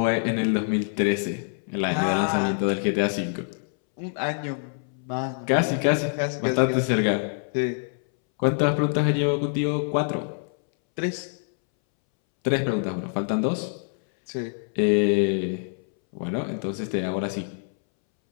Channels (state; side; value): silent; right; 61 dB below the other